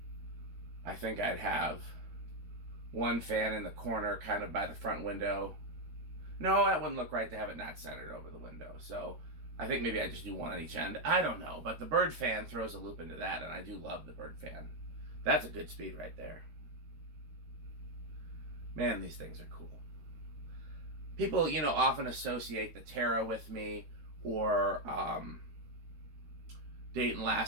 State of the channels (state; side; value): late; left; 13 ms